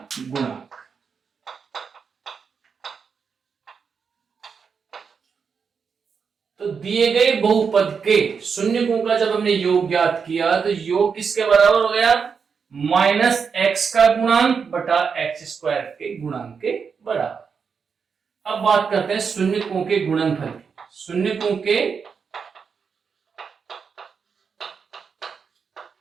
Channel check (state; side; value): quieter; left; 6.0 dB